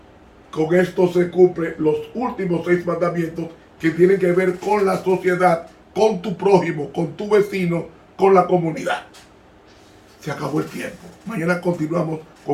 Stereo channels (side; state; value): both; identical; correlation 1.00